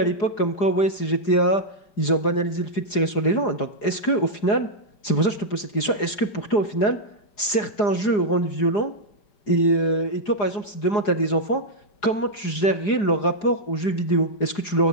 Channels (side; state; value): right; late; 4.8 ms